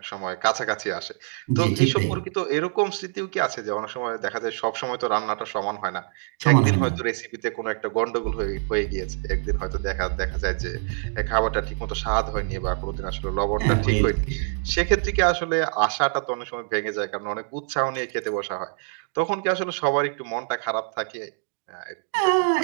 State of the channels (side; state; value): left; silent; digital silence